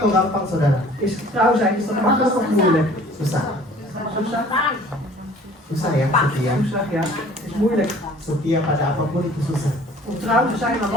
gampang saudara? Is getrouw zijn, is dat makkelijk of moeilijk? Susah. Susah? Susah ya setia. Susah, ja. Is moeilijk. Setia pada apapun itu susah. Om trouw te zijn aan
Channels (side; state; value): both; normal; correlation 0.51